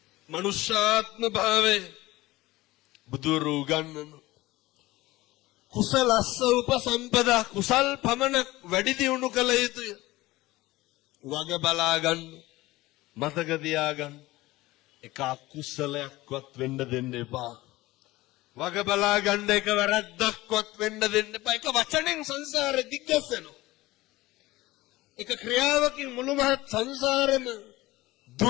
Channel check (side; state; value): right; quieter; 18.9 dB